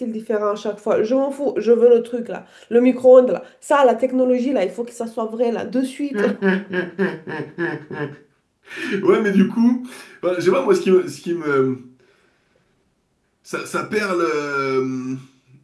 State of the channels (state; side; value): identical; both; correlation 1.00